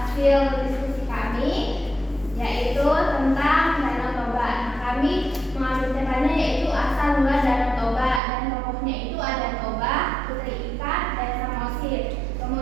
diskusi kami, yaitu tentang Danau Toba. Kami mengambil temanya yaitu asal mula Danau Toba, dan tokohnya itu ada Toba, Putri Ikat, dan Samosir.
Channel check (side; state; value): left; drops out; at 8.2 s